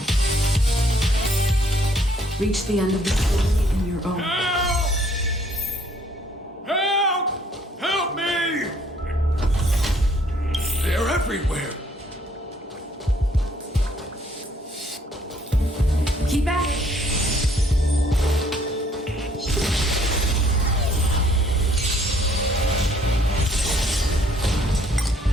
Reach the end of the story in your own. Help! Help me! They're everywhere. Keep at it.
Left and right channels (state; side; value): normal; both; correlation 0.64